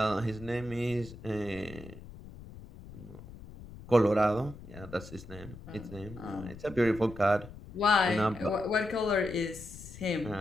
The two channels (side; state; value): left; noise; rumble, 15 dB below the sound